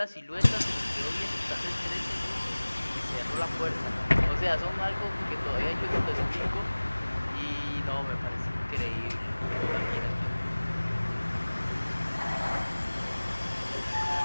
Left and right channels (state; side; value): inverted; both; correlation -1.00